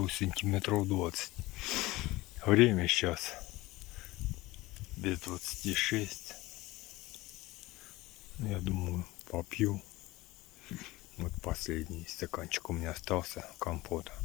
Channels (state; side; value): quieter; right; 19.7 dB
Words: сантиметров 20. Время сейчас без 26. Я думаю, попью. Вот последний стаканчик у меня остался компота